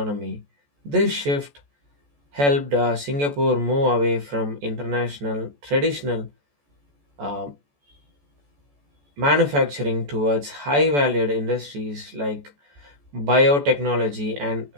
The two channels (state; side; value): late; left; 14 ms